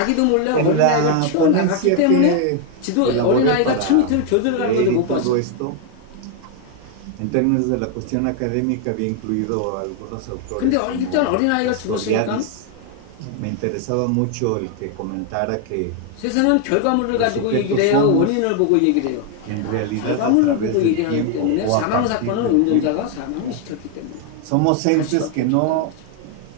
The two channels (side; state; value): both; different; correlation 0.01